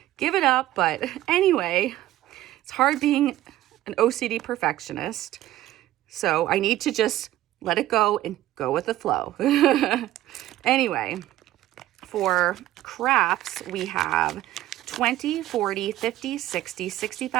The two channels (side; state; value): left; quieter; 14.6 dB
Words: give it up. But anyway, it's hard being an OCD perfectionist, so I need to just let it go and go with the flow. Anyway, for crafts, we have 20, 40, 50, 60,